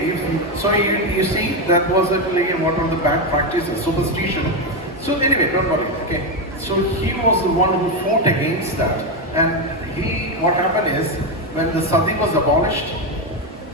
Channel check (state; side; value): normal; both; correlation 0.09